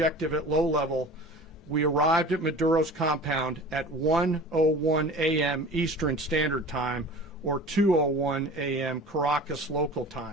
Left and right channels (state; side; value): normal; both; correlation 0.40